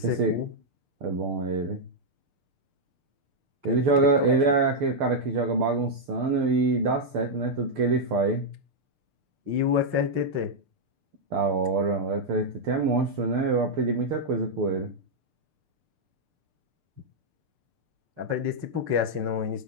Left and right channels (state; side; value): late; left; 6.7 ms